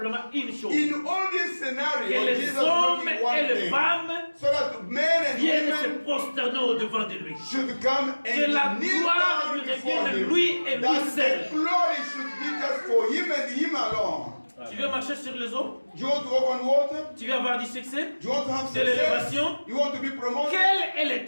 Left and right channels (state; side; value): inverted; both; correlation -1.00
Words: une chose. In all this scenario, Que les Jesus hommes looking one et les thing, femmes so that men and viennent se women prosterner au-devant de lui. should come Que la and kneel gloire down lui before revienne him. lui et lui That seul. the glory should be just for him and him alone. Tu veux marcher sur les eaux? Do you want to walk on water? Tu veux avoir du succès? Do you want to have De success? l'élévation? You want to be promoted? Quelle est